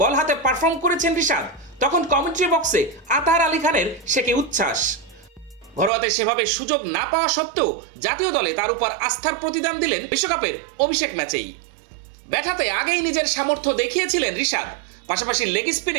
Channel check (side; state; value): left; drops out; at 5.9 s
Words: বল হাতে পারফর্ম করেছেন রিশাদ, তখন কমেন্ট্রি বক্সে আতার আলী খানের সে কি উচ্ছ্বাস। ঘরোয়াতে সেভাবে সুযোগ না পাওয়া সত্ত্বেও জাতীয় দলে তার উপর আস্থার প্রতিদান দিলেন বিশ্বকাপের অভিষেক ম্যাচেই। ব্যাট হাতে আগেই নিজের সামর্থ্য দেখিয়েছিলেন রিশাদ, পাশাপাশি লেগ